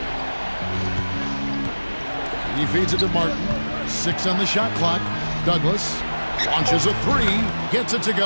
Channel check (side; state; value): both; inverted; correlation -1.00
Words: He feeds it to Martin. 6 on the shot clock. Douglas launches a 3. Gets it to